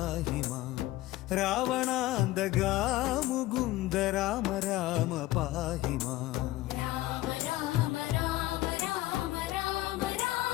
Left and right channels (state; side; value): quieter; right; 17.0 dB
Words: മാം. രാവണാന്തകാ മുകുന്ദ രാമ രാമ പാഹി മാം. രാമ രാമ രാമ രാമ രാമ